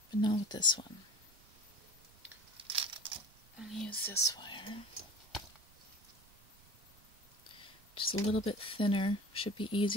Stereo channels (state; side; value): noise; right; rumble, 27 dB below the sound